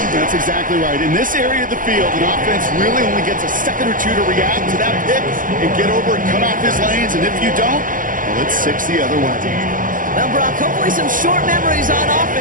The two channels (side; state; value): left; late; 0.39 ms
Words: That's exactly right. In this area of the field, an offense really only gets a second or two to react to that pick and get over and cut off his lanes. And if you don't, well, it's 6 the other way. Well, Brock, hopefully some short memories on